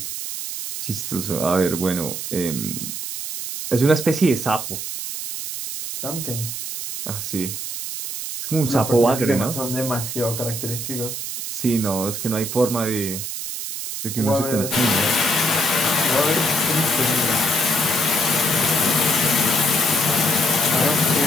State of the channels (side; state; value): right; noise; hiss, 6 dB below the sound